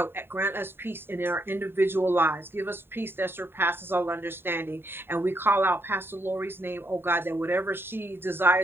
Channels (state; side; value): late; left; 0.11 ms